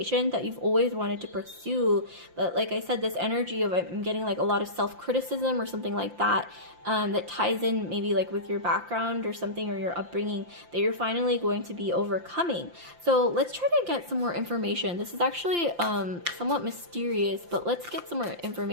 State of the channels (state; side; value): late; left; 5.8 ms